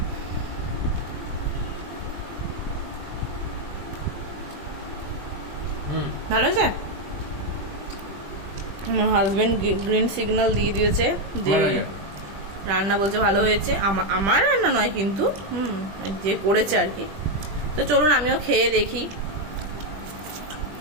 ভালো হয়েছে। আমার হাজবেন্ড গ্রিন সিগন্যাল দিয়ে দিয়েছে যে রান্না, বলছে ভালো হয়েছে। আমার রান্না নয় কিন্তু, যে করেছে আর কি। তো চলুন আমিও খেয়ে দেখি।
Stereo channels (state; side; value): late; left; 20 ms